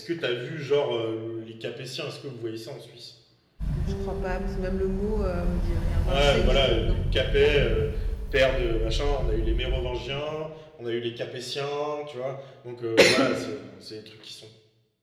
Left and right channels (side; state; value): both; identical; correlation 1.00